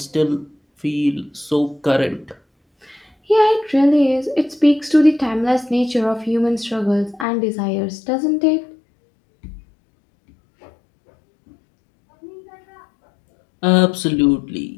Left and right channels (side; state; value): right; drops out; at 7.2 s